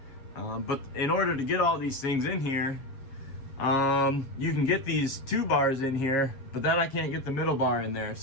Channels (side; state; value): right; late; 7.4 ms